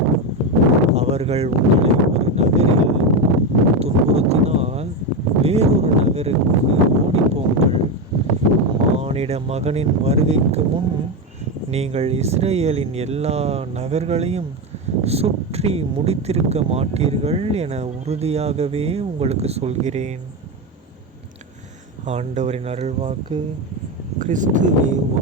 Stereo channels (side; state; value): both; normal; correlation 0.13